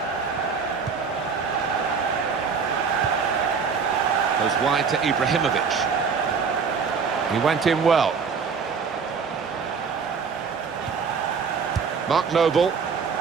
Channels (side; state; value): left; quieter; 5.7 dB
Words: Goes wide to Ibrahimovic. He went in well. Mark Noble.